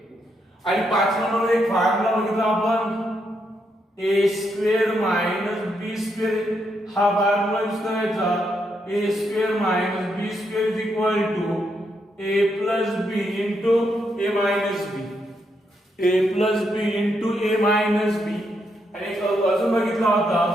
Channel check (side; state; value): both; normal; correlation 0.79